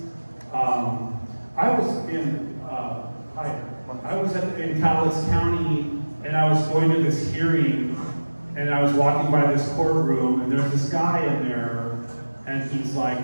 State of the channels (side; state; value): both; inverted; correlation -1.00